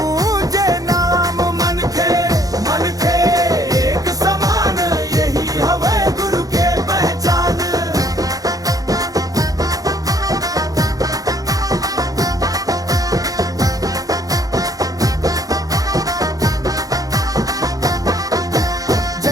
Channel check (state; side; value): late; left; 0.17 ms